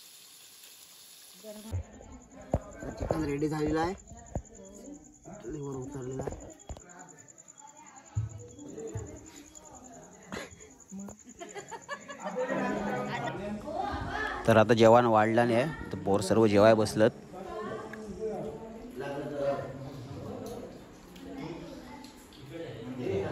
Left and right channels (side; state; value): both; identical; correlation 1.00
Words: चिकन रेडी झालेला आहे, चुलीवर उतरलेला आहे. तर आता जेवण वाढलं नाही, तर पोर सर्व जेवाय बसलत.